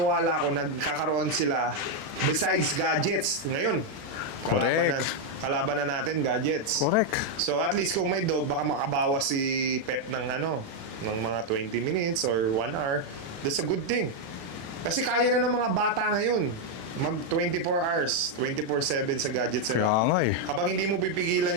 ako, nagkakaroon sila besides gadgets. Ngayon, kalaban na natin, gadgets. Correct. So, at least kung may dog, baka makabawas si pet ng ng mga 20 minutes or 1 hour. That's a good thing. Kasi kaya na ng mga bata ngayon mag 24 hours, 24/7 sa gadgets nila. Kaya nga eh. Kapag hindi mo pipigilan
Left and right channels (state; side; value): late; left; 36 ms